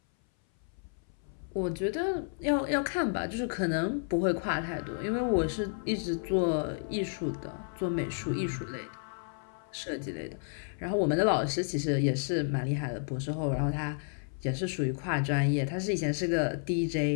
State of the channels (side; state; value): right; silent; 57 dB below the other